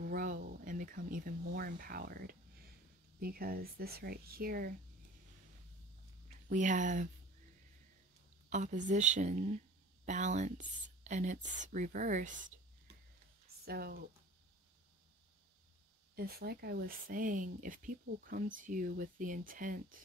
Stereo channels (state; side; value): normal; both; correlation 0.43